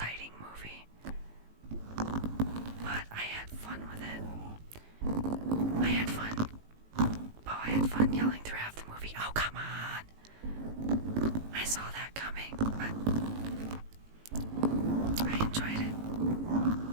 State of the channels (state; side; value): late; left; 18 ms